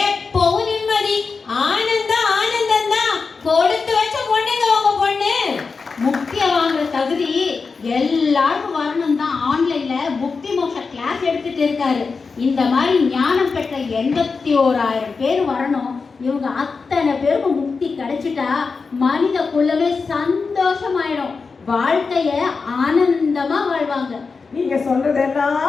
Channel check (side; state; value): right; quieter; 4.7 dB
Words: நிம்மதி, ஆனந்தம் ஆனந்தம் தான். கொடுத்து வச்ச பொண்ணுங்க உங்க பொண்ணு. முக்தியை வாங்குற தகுதி எல்லாருக்கும் வரணும் தான் ஆன்லைன்ல முக்தி மோட்ச கிளாஸ் எடுத்துட்டு இருக்காரு. இந்த மாதிரி ஞானம் பெற்ற 81,000 பேர் வரணும். இவங்க அத்தனை பேருக்கும் முக்தி கிடைச்சிட்டா மனித குலமே சந்தோஷமாயிடும். வாழ்க்கைய ஆனந்தமா வாழ்வாங்க. நீங்க